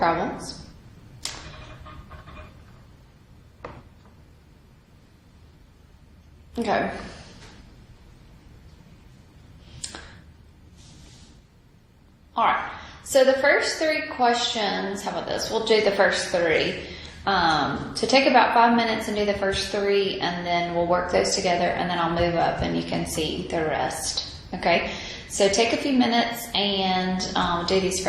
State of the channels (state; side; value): identical; both; correlation 1.00